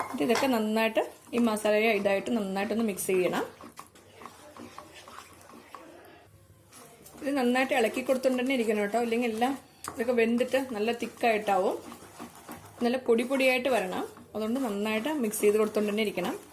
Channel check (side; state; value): both; identical; correlation 1.00